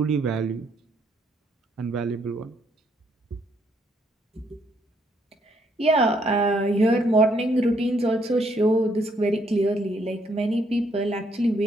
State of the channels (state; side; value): normal; both; correlation 0.71